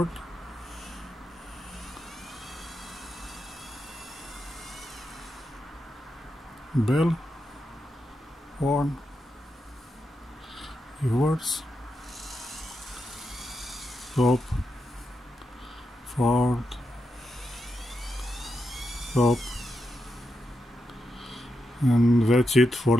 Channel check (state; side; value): normal; both; correlation 0.86